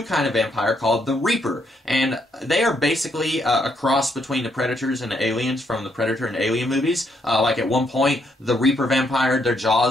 kind of vampire called the Reaper. And they are basically a cross between the Predators and the Aliens from the Predator and Alien movies. Like at one point, the Reaper vampire, their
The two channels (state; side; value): normal; both; correlation 0.74